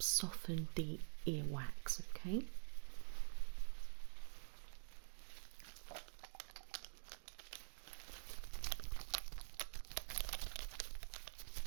soften the earwax, okay?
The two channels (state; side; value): silent; left; digital silence